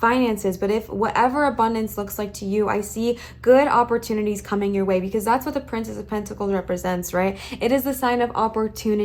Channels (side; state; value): both; identical; correlation 1.00